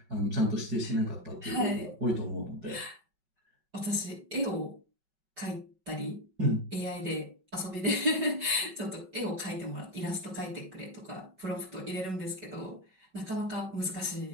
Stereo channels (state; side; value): late; left; 5.3 ms